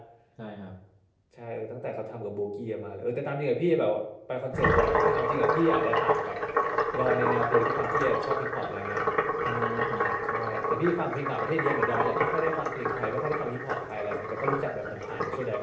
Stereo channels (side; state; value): both; identical; correlation 1.00